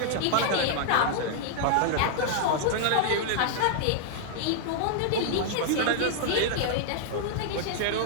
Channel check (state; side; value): different; both; correlation -0.01